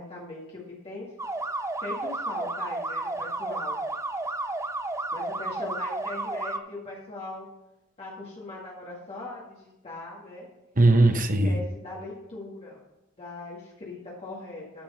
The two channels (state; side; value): normal; both; correlation 0.77